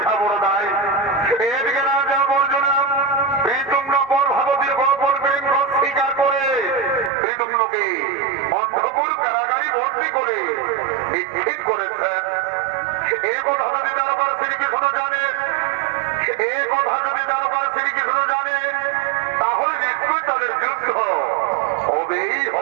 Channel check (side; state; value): left; drops out; at 7.1 s